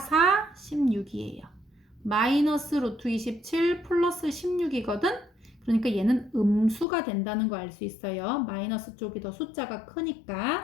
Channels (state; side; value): drops out; right; at 6.9 s